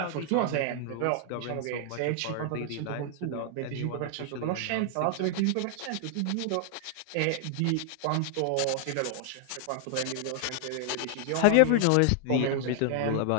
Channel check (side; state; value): both; different; correlation 0.00